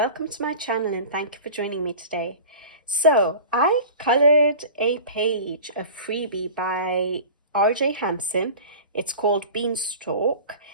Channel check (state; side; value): inverted; both; correlation -0.38